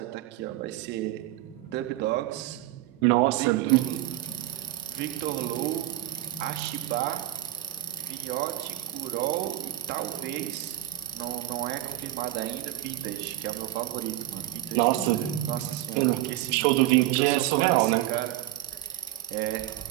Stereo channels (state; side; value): quieter; left; 14.7 dB